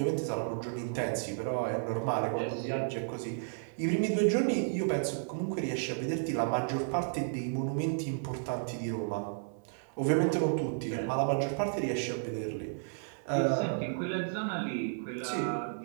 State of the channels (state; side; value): silent; left; digital silence